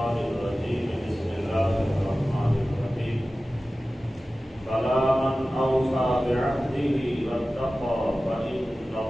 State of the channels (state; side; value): normal; both; correlation 0.96